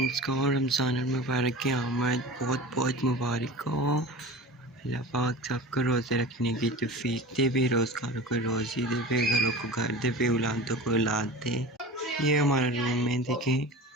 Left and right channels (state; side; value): normal; both; correlation 0.34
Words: को रमज़ान मुबारक की आमद बहुत बहुत मुबारक हो। अल्लाह पाक सबको रोज़े रखने की तौफीक दे, बेरोज़गारों को रोज़ी दे, बेघरों को घर दे, बेऔलादों को औलाद दे। ये हमारा रूम में देखें।